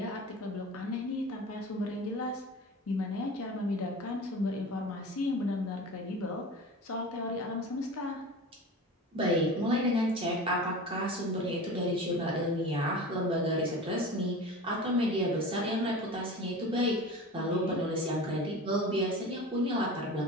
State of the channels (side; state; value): both; normal; correlation 0.34